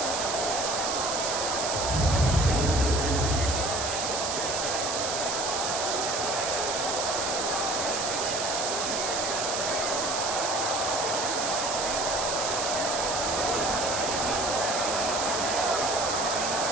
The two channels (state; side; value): noise; right; hiss, 1 dB below the sound